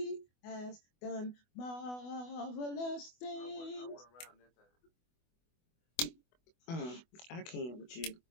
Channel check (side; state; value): right; late; 24 ms